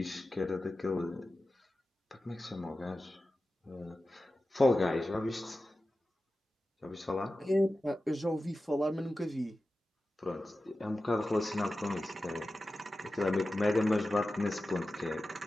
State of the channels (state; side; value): normal; both; correlation 0.94